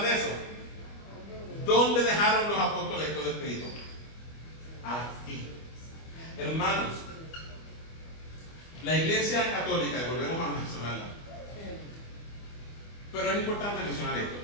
de eso? ¿Dónde dejaron los apóstoles todo escrito? Aquí. Hermanos, la Iglesia Católica, y volvemos a mencionarla, pero es importante mencionar esto.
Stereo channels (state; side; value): late; right; 25 ms